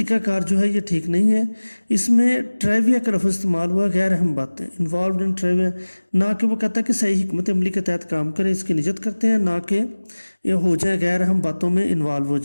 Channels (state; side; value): inverted; both; correlation -1.00